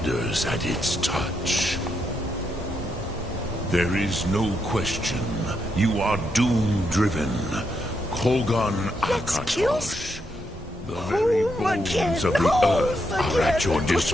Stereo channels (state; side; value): normal; both; correlation 0.80